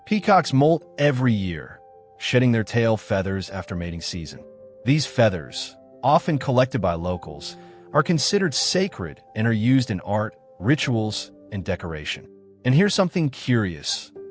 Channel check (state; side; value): identical; both; correlation 1.00